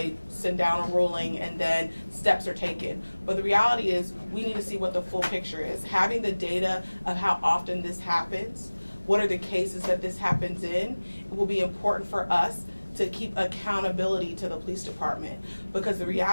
send down a ruling and then steps are taken. But the reality is we need to see what the full picture is. Having the data of how often this happens, what are the cases that this happens in, it will be important for us to keep accountability to the police department. Because the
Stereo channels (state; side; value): inverted; both; correlation -1.00